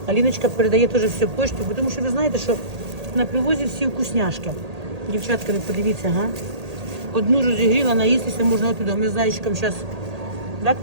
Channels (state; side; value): late; left; 1.8 ms